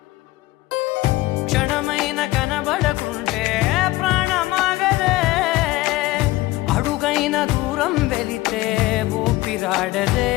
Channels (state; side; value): quieter; right; 18.7 dB